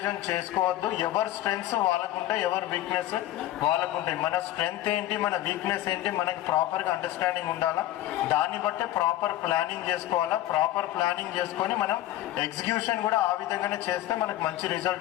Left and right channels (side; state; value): right; quieter; 14.3 dB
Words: చేసుకోవద్దు. ఎవరి స్ట్రెంగ్స్ వాళ్ళకుంటాయి, ఎవరి వీక్నెస్ వాళ్ళకుంటాయి. మన స్ట్రెంగ్త్ ఏంటి, మన వీక్నెస్ ఏంటి, మనకి ప్రాపర్గా అండర్స్టాండింగ్ ఉండాలా. దాన్ని బట్టే ప్రాపర్ ప్లానింగ్ చేసుకోవాలా. ప్రాపర్ ప్లానింగ్ చేసుకొని మనం ఎగ్జిక్యూషన్ కూడా ఆ విధంగానే చేస్తే మనకు మంచి